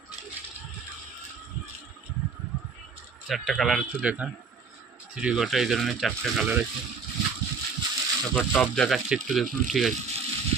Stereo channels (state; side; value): quieter; left; 5.2 dB